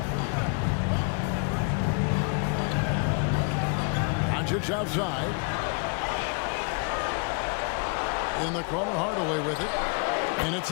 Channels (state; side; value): quieter; right; 37.3 dB